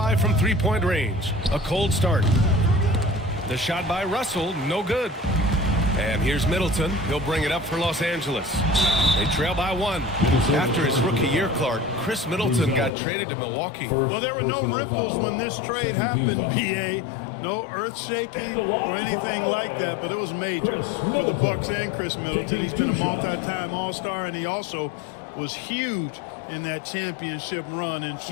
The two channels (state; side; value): drops out; right; at 12.9 s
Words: from three-point range. A cold start. The shot by Russell, no good. And here's Middleton. He'll bring it up for Los Angeles. They trail by 1. After his rookie year, Clark, Chris Middleton got traded to Milwaukee. Well, there were no ripples when this trade happened, BA. No earth shaking or anything like that, but it was major for the Bucks and Chris Middleton. He's been a multi-time All-Star, and he also was huge in that championship run in